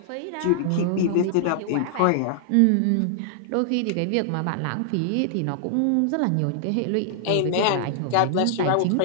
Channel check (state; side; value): different; both; correlation 0.00